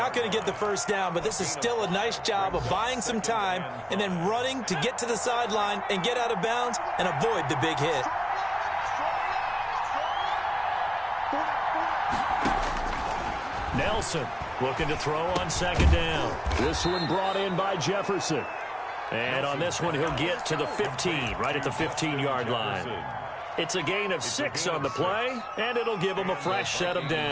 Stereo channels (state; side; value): identical; both; correlation 1.00